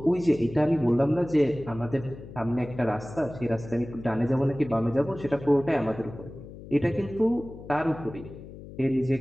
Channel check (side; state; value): left; noise; hum, 15 dB below the sound